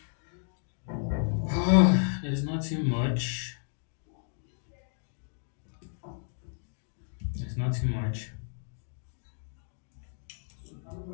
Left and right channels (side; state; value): right; silent; digital silence